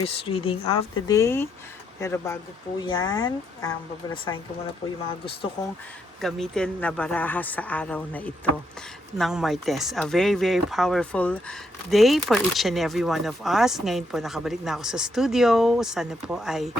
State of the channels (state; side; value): normal; both; correlation 0.76